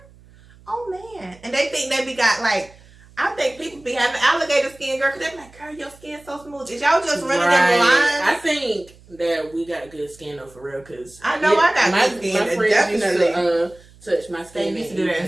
Oh man. And they think they be got, like, I think people be having alligator skin, girl, because they be like, girl, your skin's so smooth. Is y'all just running them lines? I think that we got good skin though, for real, because I know I got good skin. My friends definitely used to touch my skin. They used to do that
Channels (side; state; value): right; noise; hum, 25 dB below the sound